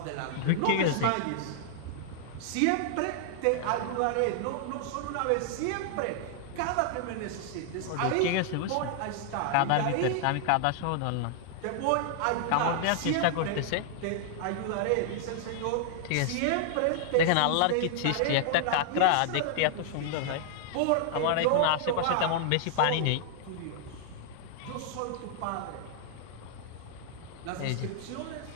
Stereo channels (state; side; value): different; both; correlation -0.01